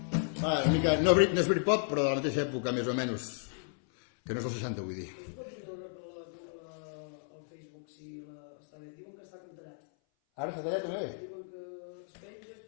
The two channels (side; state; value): right; silent; 55 dB below the other